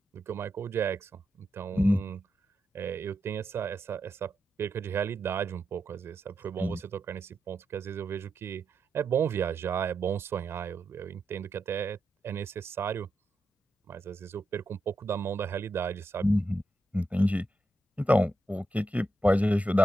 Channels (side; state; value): both; normal; correlation 0.85